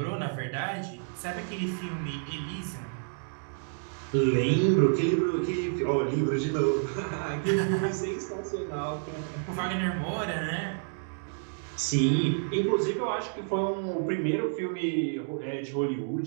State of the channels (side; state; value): left; silent; digital silence